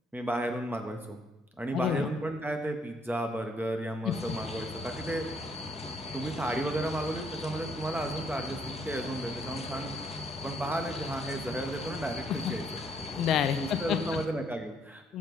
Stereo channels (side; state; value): both; normal; correlation 0.69